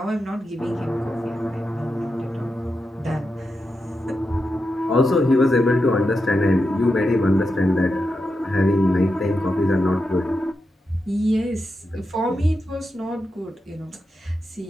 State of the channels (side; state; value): both; normal; correlation 0.88